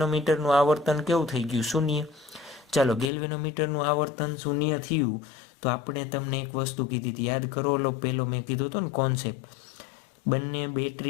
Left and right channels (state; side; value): drops out; right; at 3.1 s